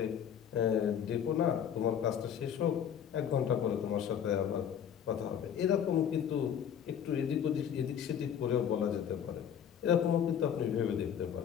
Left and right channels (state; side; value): quieter; right; 8.7 dB